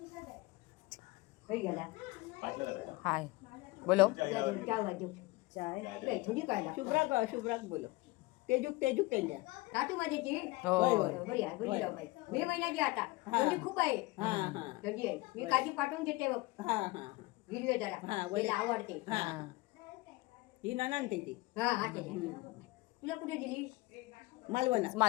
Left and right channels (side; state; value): right; quieter; 21.7 dB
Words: हाय बोलो. थोडी काय शुभ्राक बोलो. तेजूक त्यांच्या. साठू माझ्याची हो बरी आहे बरी राव बाई. मे महिन्याची आता थंडी खूप आहे. थंडी आहे. मी काजी पाठवून देते बघ. हिरवे जरा तिला आवडते. ही नानान त्याची हा हा त्याच्या. तुला कुठे दिली